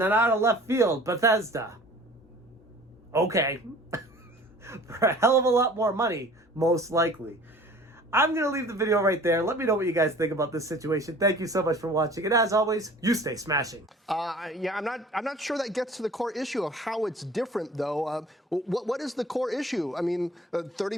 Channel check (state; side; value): normal; both; correlation 0.47